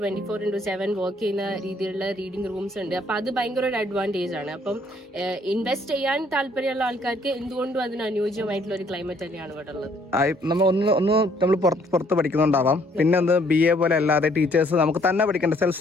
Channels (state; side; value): normal; both; correlation 0.64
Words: വർക്ക് ചെയ്യുന്ന രീതിയിലുള്ള റീഡിംഗ് റൂംസ് ഉണ്ട്. അപ്പൊ അത് ഭയങ്കര ഒരു അഡ്വാൻറ്റേജ് ആണ്. അപ്പം ഇൻവെസ്റ്റ് ചെയ്യാൻ താല്പര്യമുള്ള ആൾക്കാർക്ക് എന്തുകൊണ്ടും അതിന് അനുയോജ്യമായിട്ടുള്ള ഒരു ക്ലൈമറ്റ് തന്നെയാണ് ഇവിടെ ഉള്ളത്. നമ്മൾ പുറത്ത് പഠിക്കുന്നുണ്ടാവാം. പിന്നെ ഒന്ന് BA പോലെ അല്ലാതെ ടീച്ചേഴ്സ് നമുക്ക് തന്നെ പഠിക്കേണ്ട സെൽഫ്